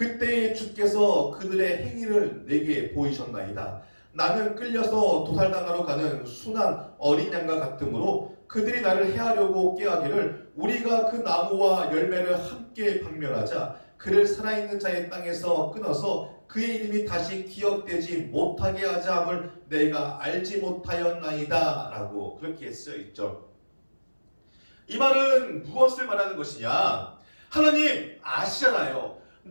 주께서 그들의 행위를 내게 보이셨나이다. 나는 끌려서 도살당하러 가는 순한 어린 양과 같으므로 그들이 나를 해하려고 꾀하기를 우리가 그 나무와 열매를 함께 박멸하자 그를 살아있는 자의 땅에서 끊어서 그의 이름이 다시 기억되지 못하게 하자 함을 내가 알지 못하였나이다 라고 그렇게 쓰여있죠. 이 말은 무엇을 말하는 것이냐? 하나님 아시잖아요.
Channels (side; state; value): both; inverted; correlation -1.00